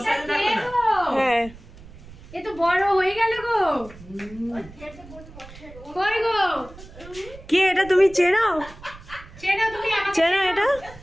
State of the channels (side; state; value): right; noise; rumble, 19 dB below the sound